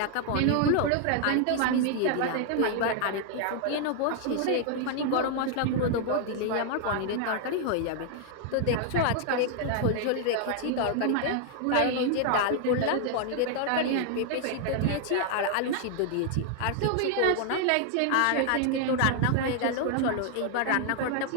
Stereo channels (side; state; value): both; different; correlation 0.00